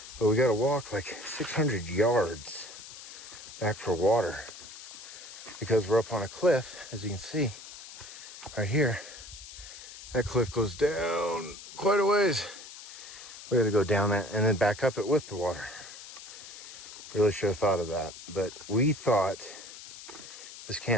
but we gotta walk like 600 yards back for water because we're up on a cliff, as you can see right here. That cliff goes down quite a ways. We gotta go down that and then back up it with the water. Really should have thought of that, but we thought this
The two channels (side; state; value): left; noise; hiss, 14 dB below the sound